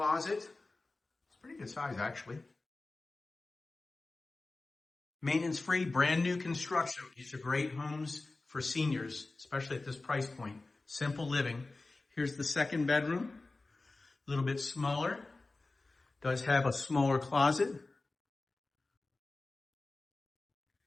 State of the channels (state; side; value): quieter; right; 3.3 dB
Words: It's pretty good size, actually. Maintenance free, brand new construction. These are great homes for seniors, especially at this price point. Simple living. Here's the second bedroom, a little bit smaller. Does have a smaller closet.